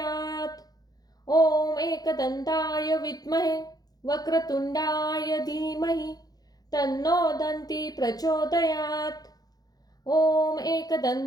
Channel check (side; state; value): right; late; 0.19 ms